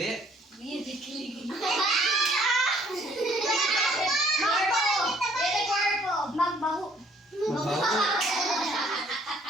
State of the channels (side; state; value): both; normal; correlation 0.61